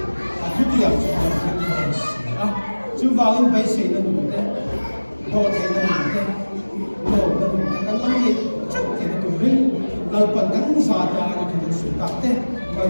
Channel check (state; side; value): inverted; both; correlation -1.00